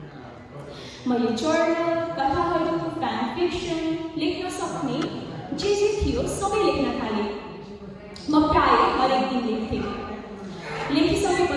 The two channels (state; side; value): identical; both; correlation 1.00